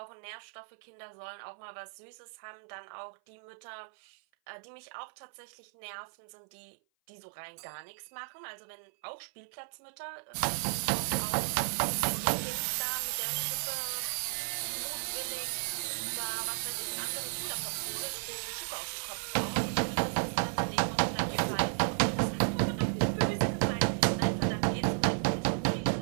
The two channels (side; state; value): left; silent; 55 dB below the other